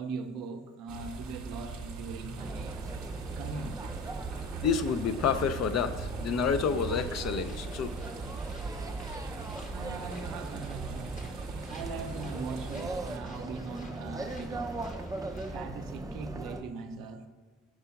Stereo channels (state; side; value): normal; both; correlation 0.39